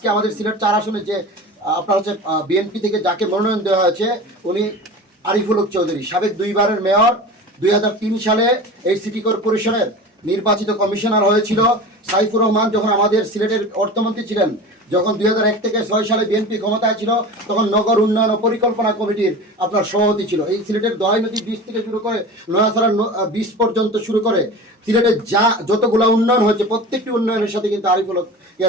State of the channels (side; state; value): both; normal; correlation 0.33